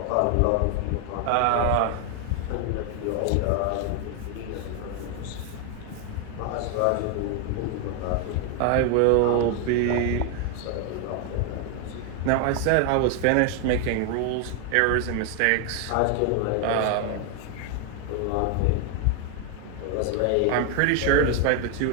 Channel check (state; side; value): different; both; correlation 0.00